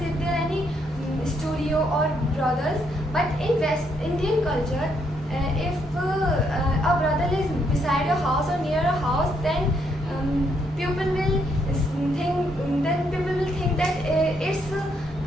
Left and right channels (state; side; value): normal; both; correlation 0.74